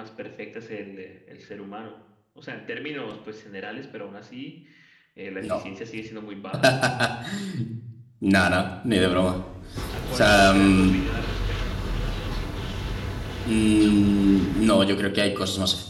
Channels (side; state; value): both; identical; correlation 1.00